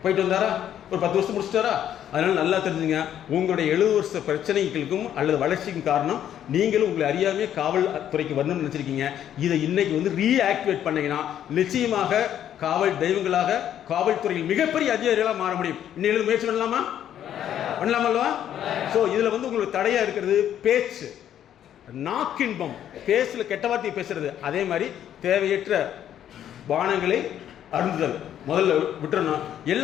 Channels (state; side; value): quieter; right; 10.5 dB